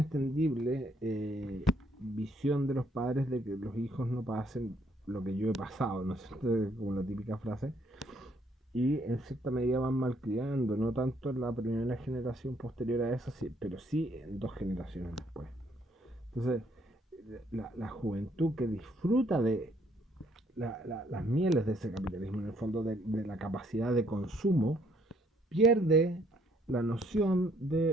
visión de los padres de que los hijos no pasen lo que yo he pasado, ¿no es cierto? Como la típica frase. Y en cierta medida van malcriando, no tanto en la primera generación posterior a esa, sí, pero sí en dos generaciones después. Entonces, la juventud que disfruta de las mieles de ese capitalismo, en el fondo de la capacidad de consumo, pierde la noción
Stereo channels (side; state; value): both; normal; correlation 0.67